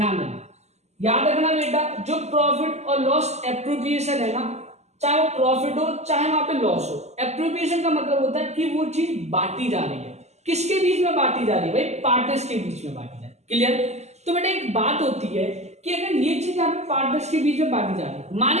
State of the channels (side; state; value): left; late; 0.33 ms